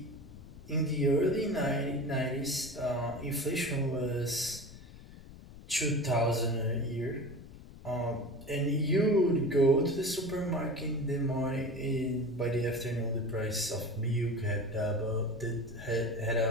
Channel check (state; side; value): noise; left; rumble, 17 dB below the sound